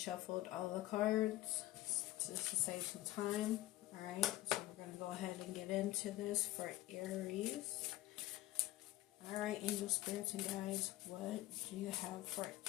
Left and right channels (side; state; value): right; quieter; 16.6 dB